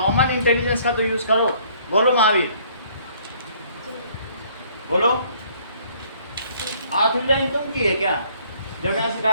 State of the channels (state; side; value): inverted; both; correlation -0.61